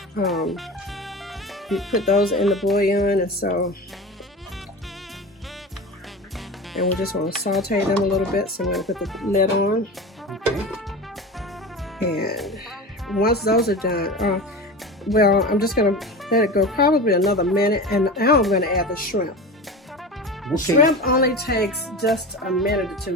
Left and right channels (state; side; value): normal; both; correlation 0.29